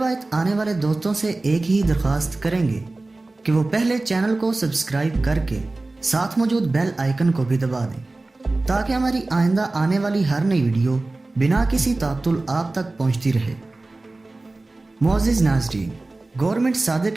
आने वाले दोस्तों से एक ही दरख्वास्त करेंगे कि वो पहले चैनल को सब्सक्राइब करके साथ मौजूद बेल आइकन को भी दबा दें ताकि हमारी आइंदा आने वाली हर नई वीडियो बिना किसी तातुल आप तक पहुंचती रहे। मोअज़्ज़िज़ नाज़रीन, government Sadiq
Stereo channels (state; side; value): quieter; left; 3.1 dB